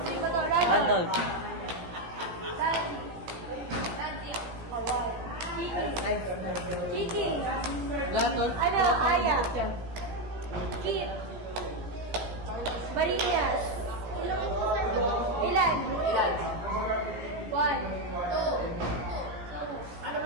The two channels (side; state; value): left; late; 17 ms